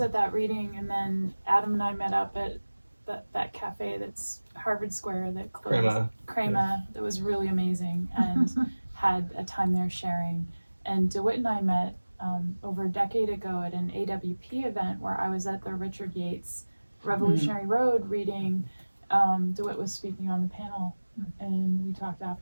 at that reading, and then Adam and I met up at that cafe that's Harvard Square that closed. Crema, that was really amazing, and had a time there sharing. And DeWitt and I met over a decade ago at an AWP event where I was at the Richard Yates Revolutionary Road reading. DeWitt was speaking on the panel, and we talked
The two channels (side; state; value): both; inverted; correlation -1.00